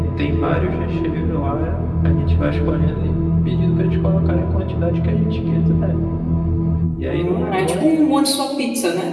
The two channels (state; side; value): identical; both; correlation 1.00